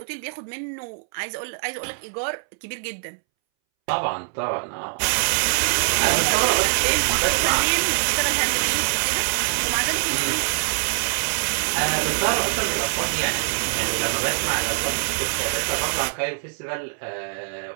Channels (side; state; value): left; silent; 63 dB below the other